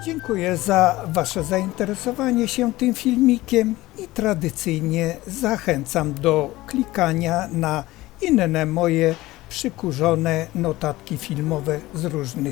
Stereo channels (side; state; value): right; quieter; 18.2 dB